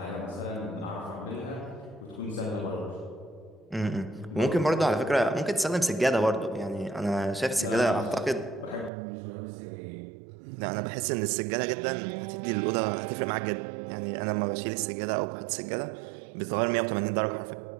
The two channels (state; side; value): drops out; left; at 8.9 s